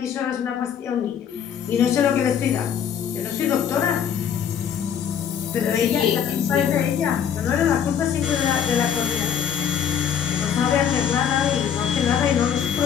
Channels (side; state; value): right; quieter; 8.3 dB